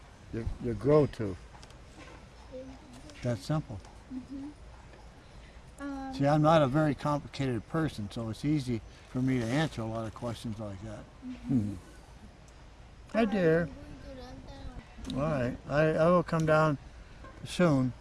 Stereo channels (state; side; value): identical; both; correlation 1.00